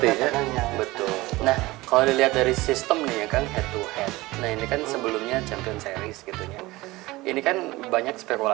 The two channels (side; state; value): left; quieter; 20.0 dB